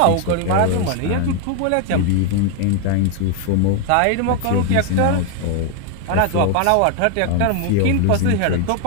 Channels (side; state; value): both; different; correlation 0.01